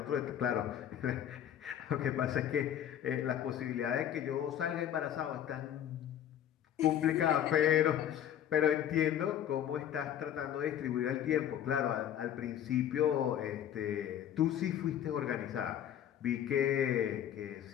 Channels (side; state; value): right; quieter; 10.4 dB